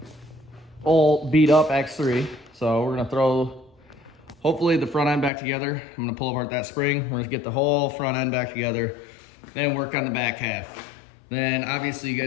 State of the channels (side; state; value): right; drops out; at 5.3 s